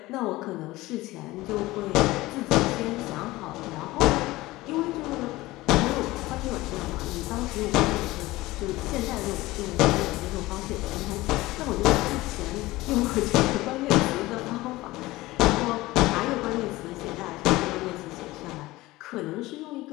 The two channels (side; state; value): right; quieter; 19.0 dB